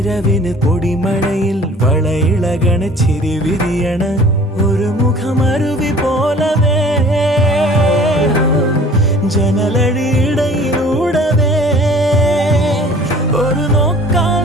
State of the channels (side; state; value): both; normal; correlation 0.50